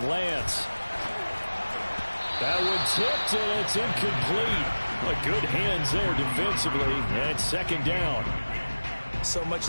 Lance. That one tipped, and it's incomplete. But good hands there defensively, and it's 2nd down. So much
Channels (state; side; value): inverted; both; correlation -1.00